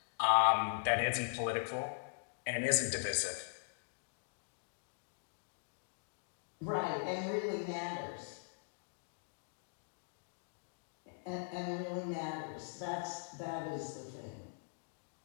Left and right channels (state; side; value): silent; right; digital silence